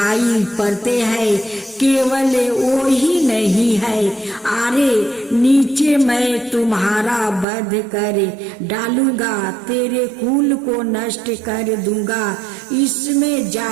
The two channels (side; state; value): left; drops out; at 7.5 s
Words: पड़ते हैं, केवल वो ही नहीं है। अरे नीचे मैं तुम्हारा वध कर डालूंगा, तेरे कुल को नष्ट कर दूंगा, इसमें